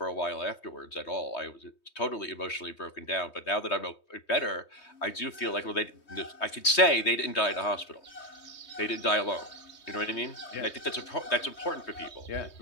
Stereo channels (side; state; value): right; late; 3.2 ms